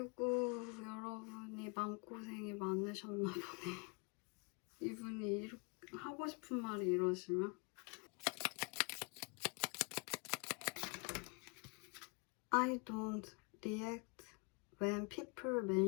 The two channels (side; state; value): right; quieter; 33.1 dB